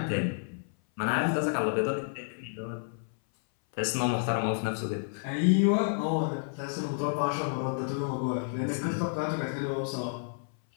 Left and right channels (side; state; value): right; silent; 58 dB below the other